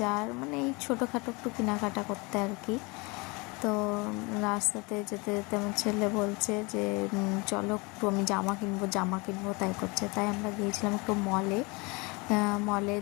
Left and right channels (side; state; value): right; quieter; 27.3 dB